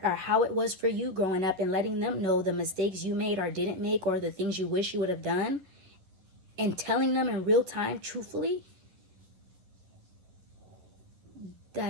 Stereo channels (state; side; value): late; left; 11 ms